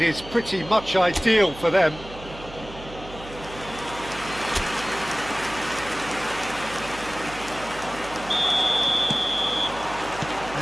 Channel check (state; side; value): noise; right; hum, 15 dB below the sound